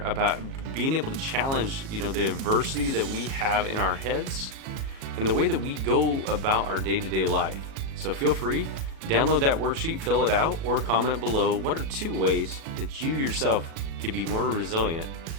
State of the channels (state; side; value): late; left; 37 ms